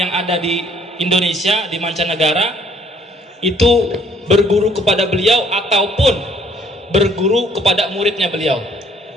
ada di Indonesia, di mancanegara, itu berguru kepada beliau ataupun berguru kepada muridnya beliau.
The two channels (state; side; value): normal; both; correlation 0.60